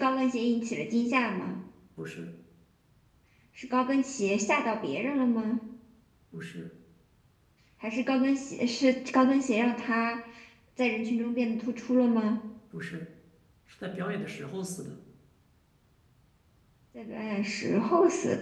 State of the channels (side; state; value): both; identical; correlation 1.00